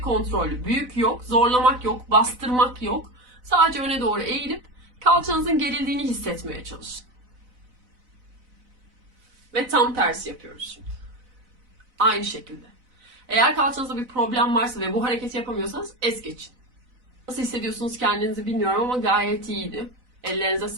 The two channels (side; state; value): left; late; 4.0 ms